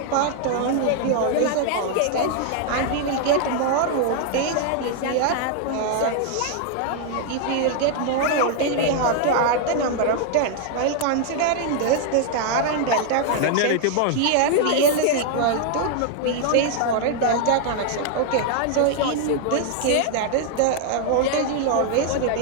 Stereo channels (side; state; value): both; different; correlation 0.00